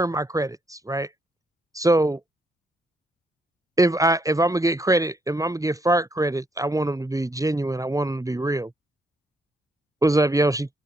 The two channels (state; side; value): normal; both; correlation 0.73